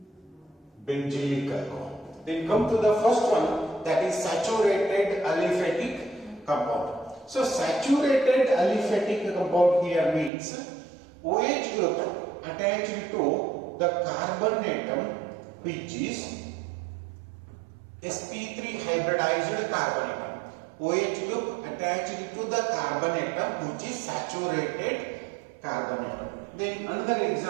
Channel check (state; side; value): drops out; left; at 10.3 s